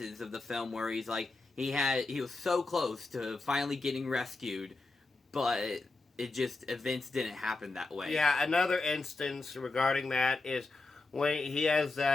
of the film where he's like, he was so close to finally getting rescued, but events didn't happen that way. Yeah, another instance regarding that is when he has the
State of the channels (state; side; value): quieter; right; 3.4 dB